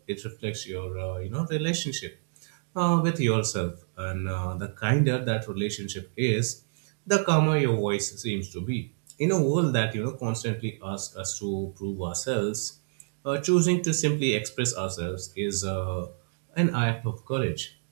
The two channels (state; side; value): silent; left; digital silence